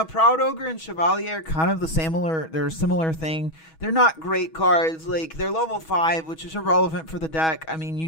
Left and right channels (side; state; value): right; late; 6.2 ms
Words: Proud Ogre and Chevalier are kind of they're a similar thing. They're not great cards. They're level 5, which is irrelevant for the deck. I mean,